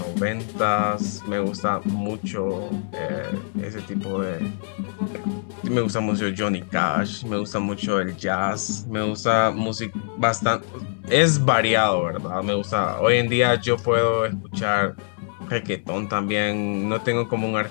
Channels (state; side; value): silent; right; digital silence